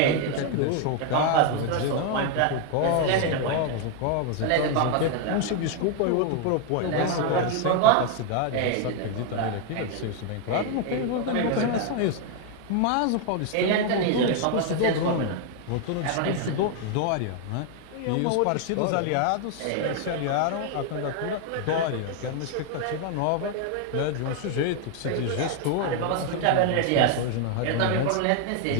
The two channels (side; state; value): both; different; correlation 0.00